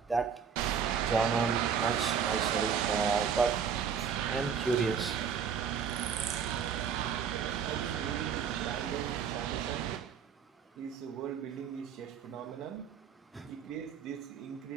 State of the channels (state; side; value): quieter; left; 7.0 dB